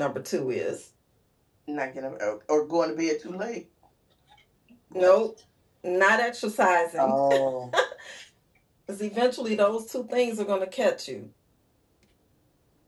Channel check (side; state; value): both; identical; correlation 1.00